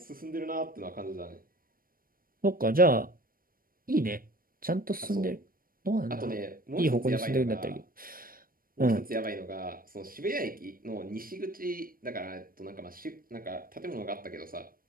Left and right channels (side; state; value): left; late; 0.41 ms